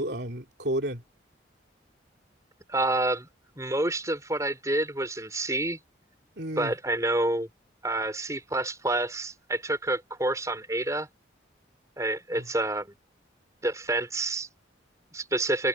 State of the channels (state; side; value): normal; both; correlation 0.43